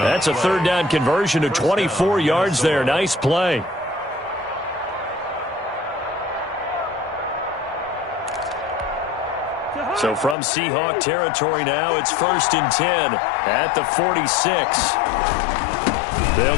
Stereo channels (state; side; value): drops out; right; at 10.4 s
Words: a 3rd down conversion to 24 yards there. Nice play. So from Seahawk territory now, it's 1st and 10 at the 46.